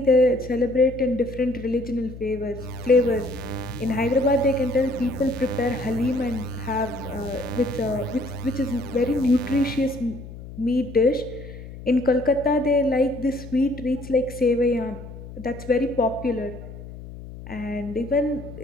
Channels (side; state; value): left; noise; hum, 13 dB below the sound